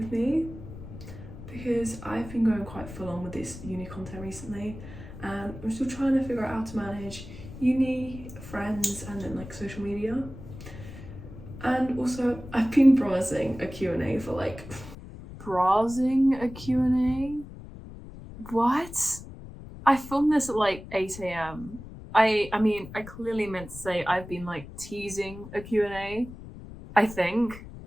me because I've been going quite full on with this uni content recently and I'm still trying to figure out how to manage uni, friends and then like social media. And also I've been browsing a Q&A for like... Browsing a Q&A? What? I filmed this at like 8 AM. I mean, I clearly meant to say I've been like teasing a Q&A, I think.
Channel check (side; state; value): left; noise; rumble, 14 dB below the sound